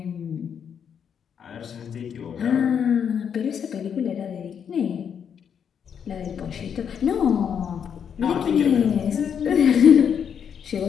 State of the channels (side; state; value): right; quieter; 7.8 dB